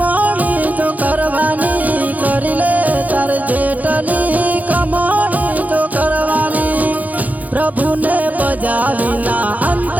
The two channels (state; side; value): late; left; 0.078 ms